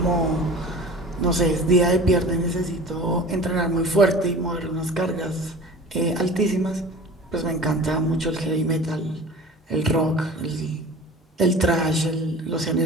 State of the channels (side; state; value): both; normal; correlation 0.40